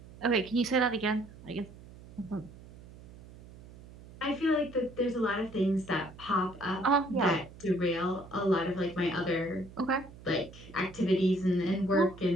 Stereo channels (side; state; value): right; noise; hum, 19 dB below the sound